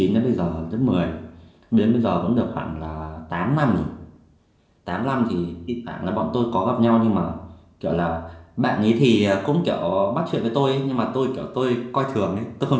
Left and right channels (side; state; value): both; identical; correlation 1.00